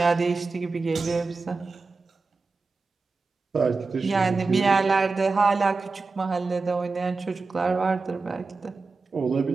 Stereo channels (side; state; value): left; quieter; 4.0 dB